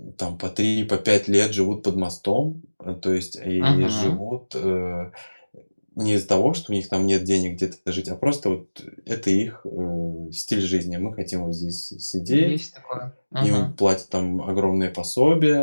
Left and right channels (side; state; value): both; inverted; correlation -1.00